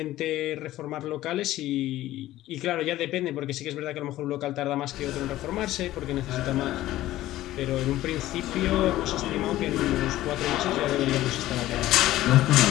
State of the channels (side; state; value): right; quieter; 15.2 dB